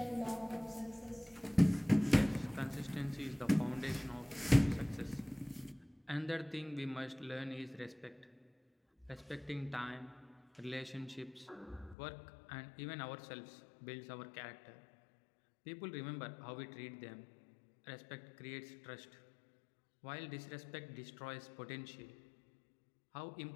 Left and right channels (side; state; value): right; drops out; at 12.0 s